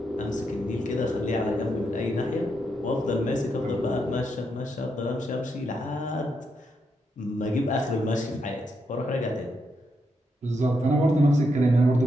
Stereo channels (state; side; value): normal; both; correlation 0.81